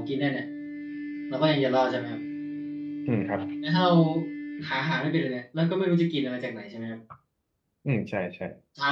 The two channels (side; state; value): both; identical; correlation 1.00